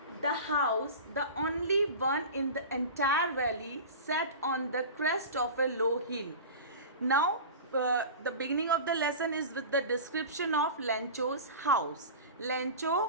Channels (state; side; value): inverted; both; correlation -0.32